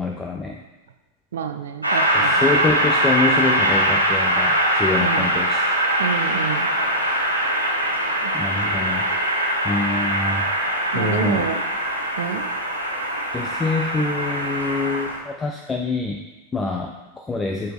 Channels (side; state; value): both; normal; correlation -0.11